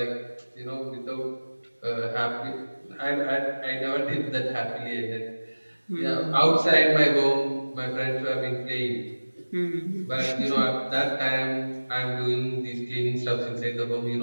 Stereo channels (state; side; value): inverted; both; correlation -1.00